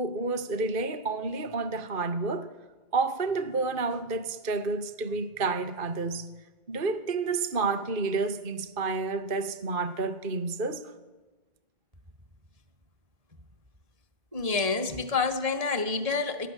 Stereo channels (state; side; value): late; left; 1.7 ms